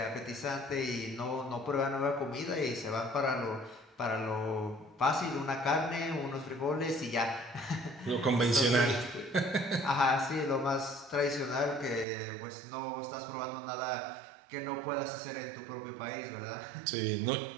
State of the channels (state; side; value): drops out; left; at 12.1 s